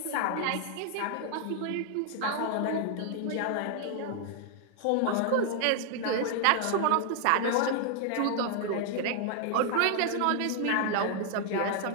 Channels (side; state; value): both; different; correlation 0.00